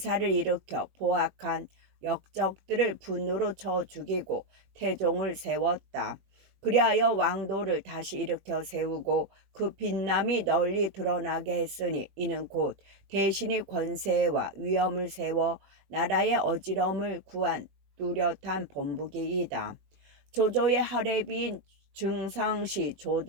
일으켜 포악한 역적들을 분노로 쳐 죽이고 태종을 세웠다. 그리하여 왕도를 다시 일으켜 세우고 그 빛남이 널리 드러나게 했으니 이는 곧 대신이 권세와 위엄을 세워 나라의 어지러움을 구한 뚜렷한 본보기이다. 조조의 하례비인 증상시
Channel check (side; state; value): left; late; 20 ms